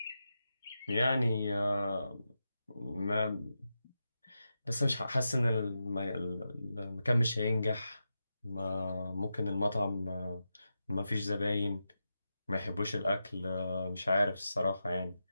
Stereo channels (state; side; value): inverted; both; correlation -0.89